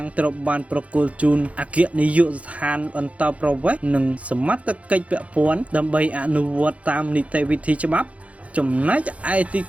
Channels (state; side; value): late; left; 0.065 ms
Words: ត្រូវបានប្រគល់ជូនអគ្គនាយកដ្ឋានអន្តរប្រវេសន៍និងសមត្ថកិច្ចពាក់ព័ន្ធដើម្បីអនុវត្តតាមនីតិវិធីច្បាប់ចំណែកឯទី